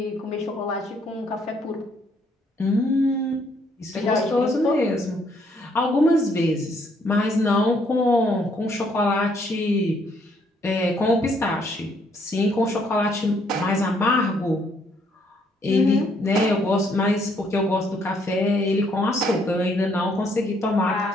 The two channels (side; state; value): both; normal; correlation 0.69